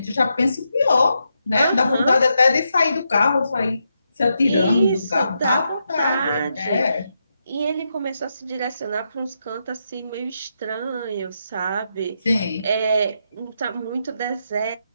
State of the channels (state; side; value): inverted; both; correlation -0.83